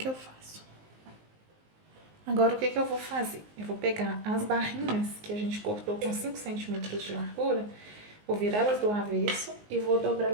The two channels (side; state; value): left; late; 19 ms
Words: eu faço. Agora o que que eu vou fazer? Eu vou pegar as barrinhas que a gente cortou com 5 centímetros de largura, vou virar elas do avesso e vou